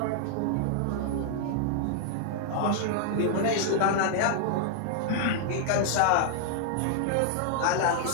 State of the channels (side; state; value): both; different; correlation -0.01